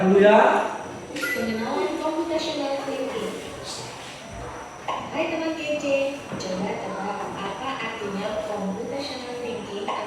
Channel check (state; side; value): identical; both; correlation 1.00